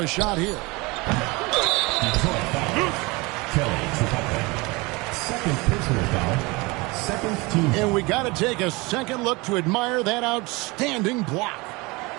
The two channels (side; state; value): left; quieter; 24.9 dB